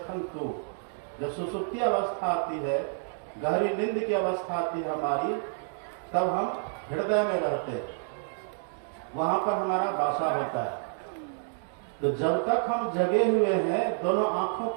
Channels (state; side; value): silent; left; digital silence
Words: तू। जब सुसुप्ति अवस्था आती है, गहरी नींद की अवस्था आती है हमारी, तब हम हृदय में रहते हैं। वहां पर हमारा वासा होता है। तो जब तक हम जगे हुए हैं दोनों आंखों